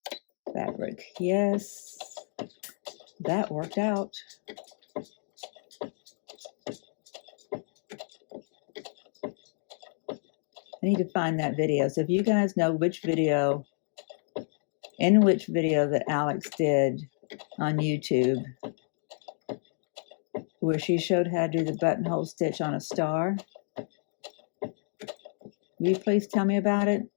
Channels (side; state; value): right; silent; 58 dB below the other